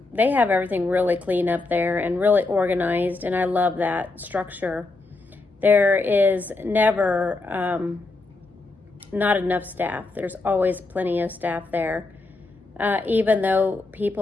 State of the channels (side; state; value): right; quieter; 3.4 dB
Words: they have everything really clean up there and really organized, and I love that structure. There is never not enough staff. There's always plenty of staff there. Even though